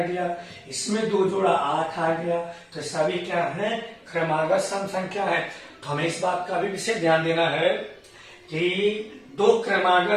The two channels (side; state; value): both; identical; correlation 1.00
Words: इसमें 2 जोड़ा 8 आ गया। तो सभी क्या है? क्रमागत सम संख्या है। तो हमें इस बात का भी विशेष ध्यान देना है कि 2